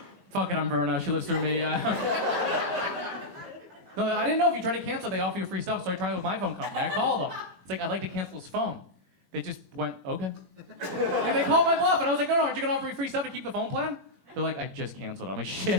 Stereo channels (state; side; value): late; left; 21 ms